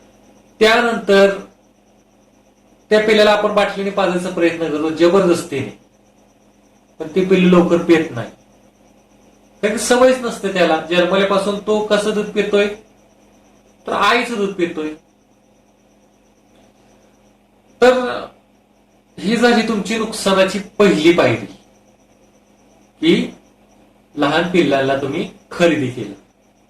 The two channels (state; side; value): identical; both; correlation 1.00